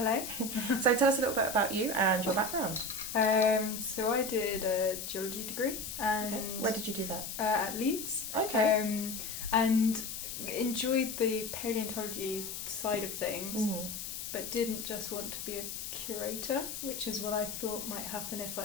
So tell us a little bit about you and your background. So I did a geology degree, and Okay. Where did you do that? at Leeds. Okay. And enjoyed the paleontology side of things, but didn't just want to be a curator, which is what I thought might happen if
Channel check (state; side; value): noise; left; hiss, 6 dB below the sound